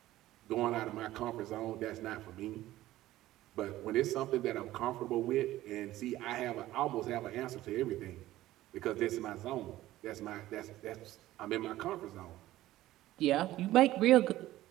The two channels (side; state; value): left; quieter; 15.4 dB